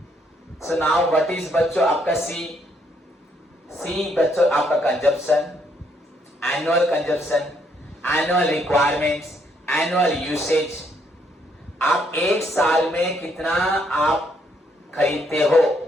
So now what is बच्चों आपका C? सी बच्चों आपका consumption, annual consumption, annual requirements, annual usage, आप एक साल में कितना आप खरीदते हो,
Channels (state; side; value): normal; both; correlation 0.72